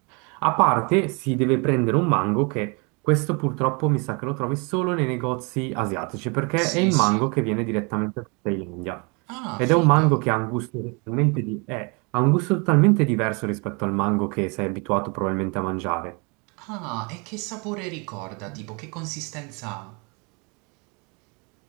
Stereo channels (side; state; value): left; quieter; 31.5 dB